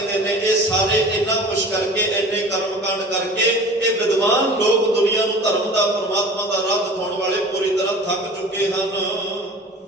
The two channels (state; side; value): normal; both; correlation 0.41